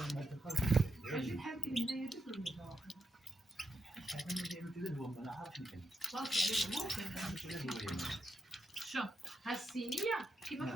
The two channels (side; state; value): both; normal; correlation 0.84